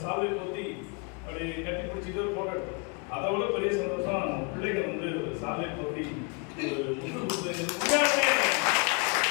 சால்வை போத்தி அப்படி கட்டி பிடிச்சிட்டு போட்டோ எடுத்தோம். அதை விட பெரிய சந்தோஷம் பிள்ளைகள் வந்து ஒரு சால்வை போத்தி ஒரு முட்டு கொடுத்து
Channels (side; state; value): right; quieter; 33.8 dB